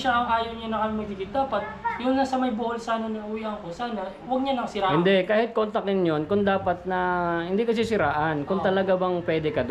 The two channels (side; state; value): both; identical; correlation 1.00